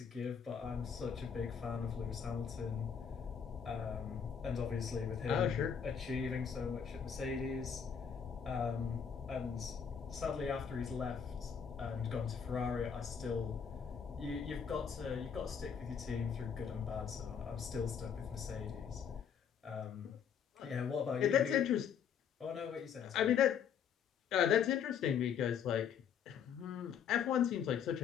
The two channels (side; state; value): right; quieter; 7.4 dB